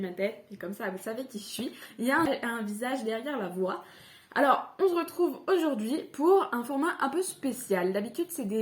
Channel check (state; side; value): identical; both; correlation 1.00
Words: tête, et comme ça, vous savez qui je suis. Il y a un visage derrière la voix. Alors, on se retrouve aujourd'hui pour un format un peu spécial. D'habitude, c'est